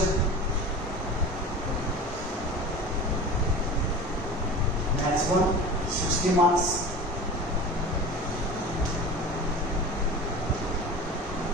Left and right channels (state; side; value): normal; both; correlation 0.35